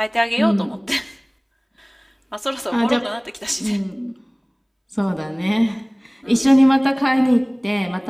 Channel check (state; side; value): identical; both; correlation 1.00